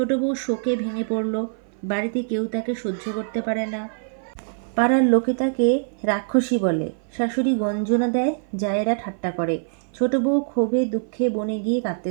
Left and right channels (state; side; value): silent; left; 56 dB below the other